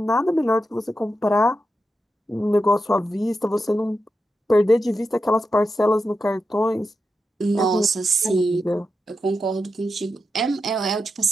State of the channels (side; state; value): both; normal; correlation 0.88